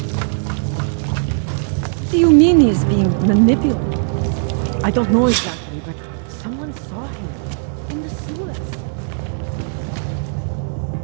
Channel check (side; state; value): left; silent; digital silence